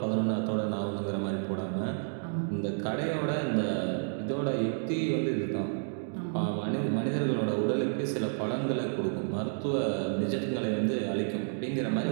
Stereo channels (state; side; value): silent; left; digital silence